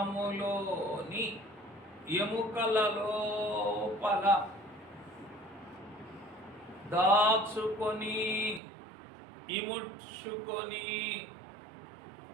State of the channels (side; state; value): left; drops out; at 8.6 s